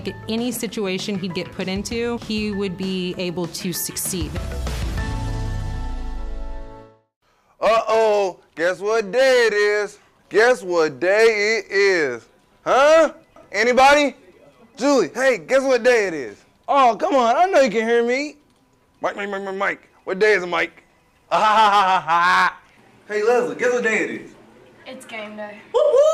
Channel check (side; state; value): both; identical; correlation 1.00